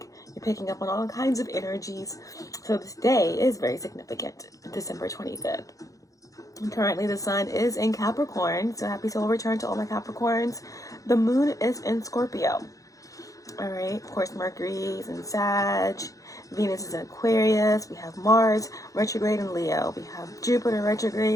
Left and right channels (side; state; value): right; late; 0.16 ms